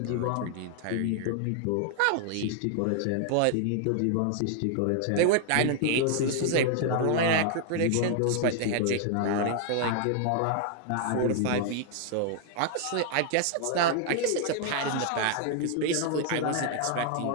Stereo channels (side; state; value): both; different; correlation 0.00